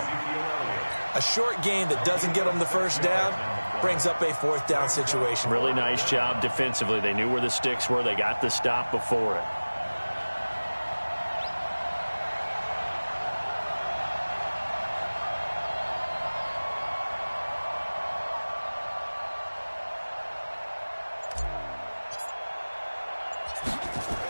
A short gain that doesn't get them the first down brings up a fourth down situation. Really nice job defensively. They knew where the sticks were. They got the stop before it.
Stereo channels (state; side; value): inverted; both; correlation -1.00